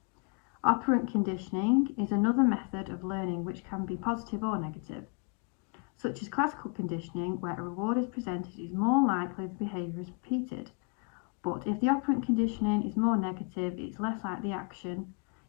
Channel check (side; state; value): right; quieter; 35.3 dB